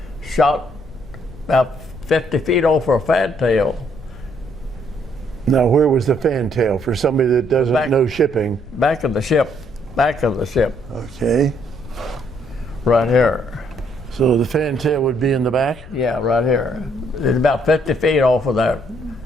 shot about 50 feet over a fantail. Now, where was the fantail for somebody that doesn't know shipping? Back of the ship. Okay. Right here. So the fantail would be in the back? Yeah, right here. It's about 50 feet off of that.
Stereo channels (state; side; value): noise; left; rumble, 17 dB below the sound